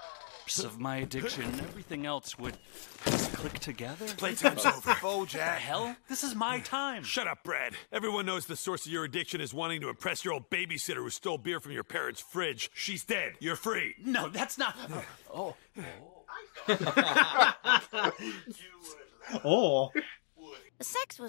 Of my addiction, everything else would just click together. Playtime's over. What the hell? This is my time. Shut up, Brad. Everyone knows the source of your addiction is wanting to impress your old babysitter who stole beer from your parents' fridge. She's dead. You're free. No, that's not. Oh. Oh. The sex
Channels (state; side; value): silent; right; digital silence